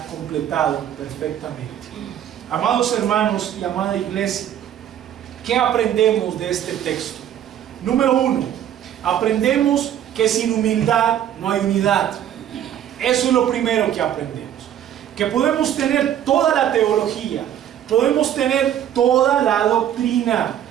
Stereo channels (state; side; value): quieter; left; 10.6 dB